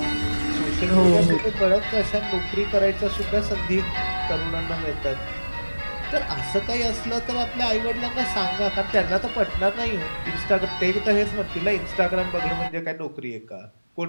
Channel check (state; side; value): inverted; both; correlation -1.00